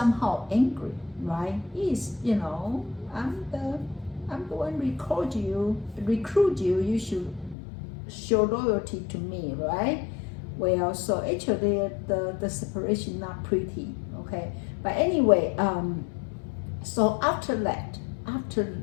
angry, right? He's, you know, I'm the one recruit you, you should show loyalty to me, right? Well, so actually the separation not pretty, okay. But anyway, so after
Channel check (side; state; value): right; drops out; at 7.6 s